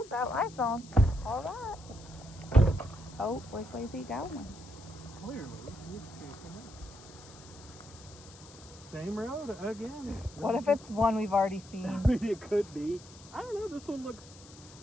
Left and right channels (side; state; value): left; noise; hiss, 20 dB below the sound